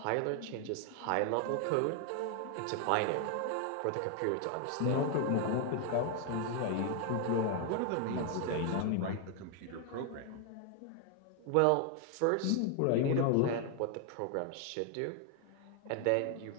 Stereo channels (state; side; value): different; both; correlation 0.01